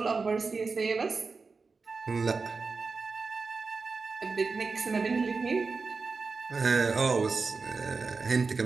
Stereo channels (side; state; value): left; quieter; 4.4 dB